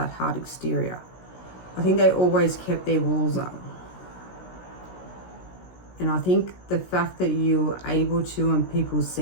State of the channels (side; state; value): right; late; 16 ms